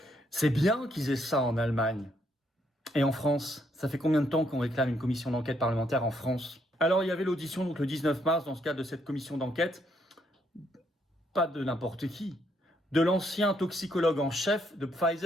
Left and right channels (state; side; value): normal; both; correlation 0.73